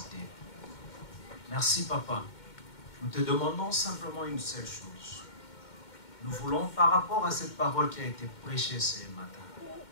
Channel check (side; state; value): right; late; 2.1 ms